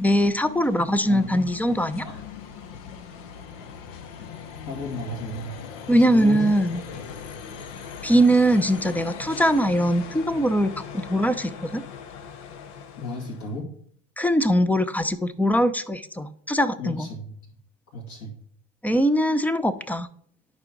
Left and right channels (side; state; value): both; normal; correlation 0.81